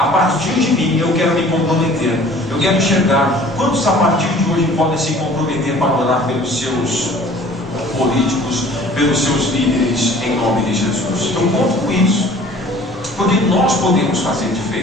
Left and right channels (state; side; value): noise; left; rumble, 27 dB below the sound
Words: partir de mim, eu quero me comprometer. Eu quero enxergar quantos a partir de hoje podem se comprometer para orar pelos seus políticos, pelos seus líderes, em nome de Jesus. Eu conto com isso, porque nós podemos fazer